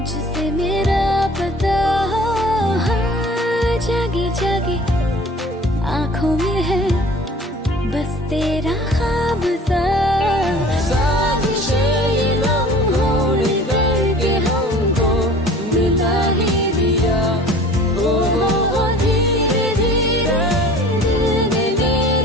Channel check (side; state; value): both; normal; correlation 0.46